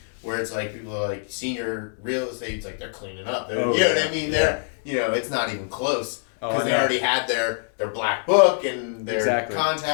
where it's like people are like senior real estate, it's like they're cleaning up. You know what I mean? They're it's not even close because they already had their black book and their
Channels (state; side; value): silent; right; 62 dB below the other